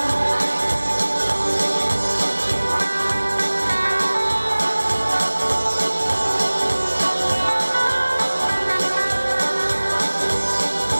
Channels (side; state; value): both; inverted; correlation -1.00